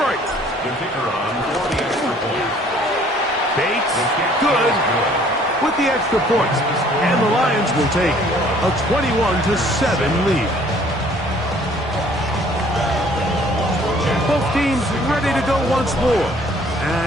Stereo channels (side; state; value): both; normal; correlation 0.57